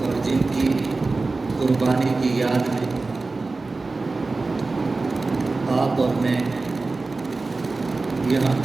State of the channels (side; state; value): left; quieter; 3.6 dB